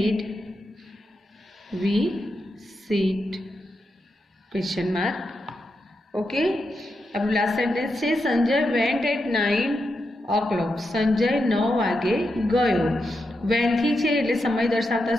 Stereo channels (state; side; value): normal; both; correlation 0.86